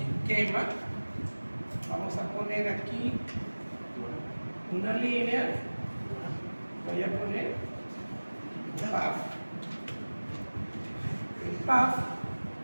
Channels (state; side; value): inverted; both; correlation -1.00